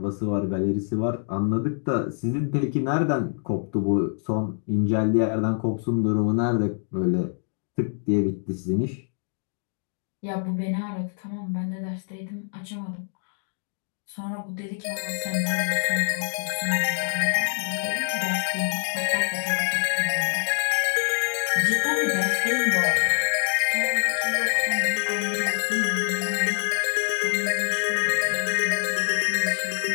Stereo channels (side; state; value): right; silent; digital silence